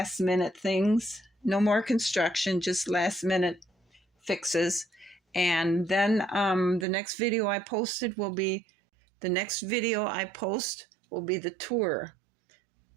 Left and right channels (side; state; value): left; drops out; at 6.9 s